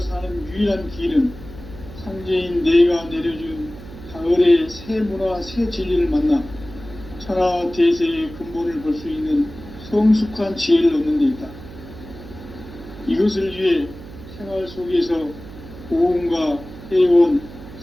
사는 유일한 길은 상제인 내가 내려준 가을의 새 문화, 새 진리를 만나 천하 대세의 근본을 볼 수 있는 성숙한 지혜를 얻는 데 있다. 이것을 위해 생활 속에서 보험과 회원,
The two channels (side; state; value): right; noise; hum, 15 dB below the sound